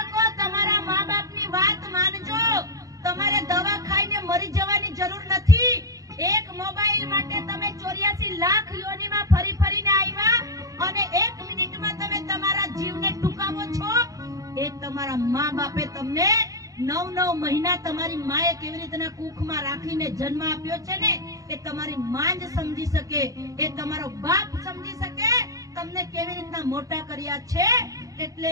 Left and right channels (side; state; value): left; late; 0.17 ms